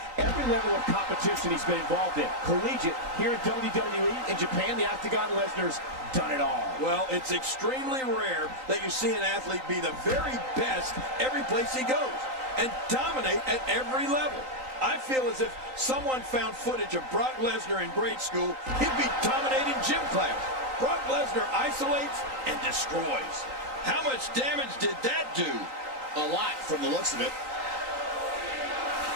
every level of competition he's been involved in. Collegiate, here in WWE, in Japan, the Octagon, Lesnar's done it all. Well, it's extremely rare that you see an athlete be the very best every place he goes and dominate at every level. I feel as if someone found footage of Brock Lesnar in grade school, he'd be dominating gym class. Brock Lesnar isolates and destroys. How much damage did that do? A lot from the looks of it.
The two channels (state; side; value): late; left; 3.9 ms